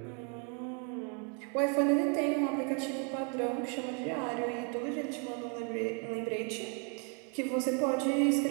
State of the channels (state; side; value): quieter; left; 36.5 dB